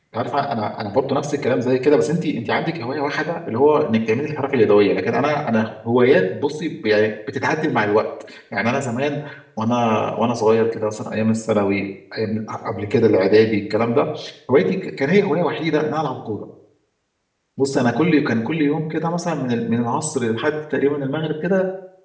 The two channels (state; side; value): identical; both; correlation 1.00